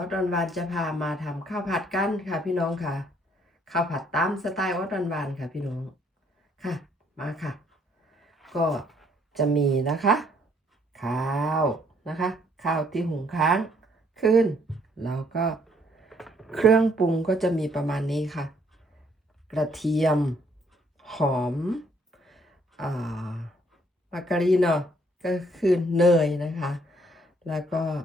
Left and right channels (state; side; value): normal; both; correlation 0.66